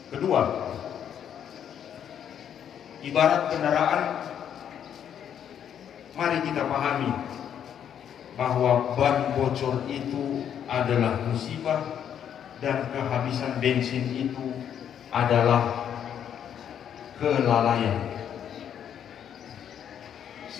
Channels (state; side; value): quieter; right; 9.1 dB